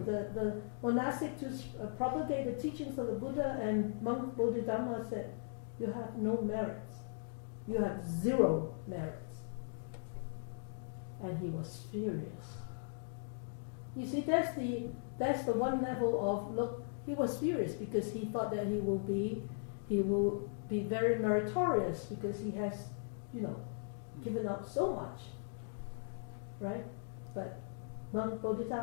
monastic to propagate the teachings of the Buddha, and monk Bodhidharma said, you have no merits. You have 0 merits. And he was furious. You see, that's the one level of look. He was furious because he thought that he will be very meritorious because he has, given out so much, right? But monk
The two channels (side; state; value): right; silent; digital silence